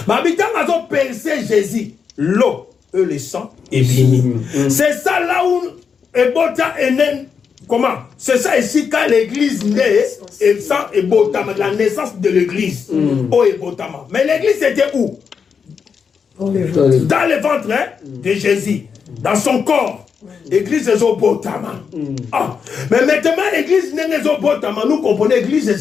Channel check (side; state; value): right; quieter; 6.3 dB